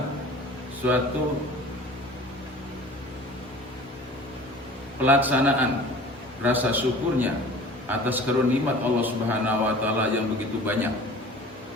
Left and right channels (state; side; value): normal; both; correlation 0.43